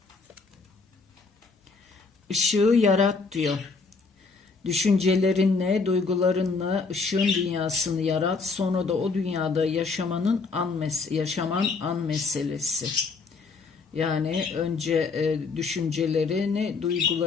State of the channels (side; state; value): right; quieter; 4.4 dB